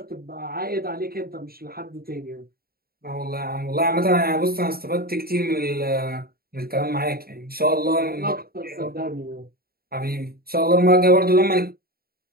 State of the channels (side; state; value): left; late; 0.44 ms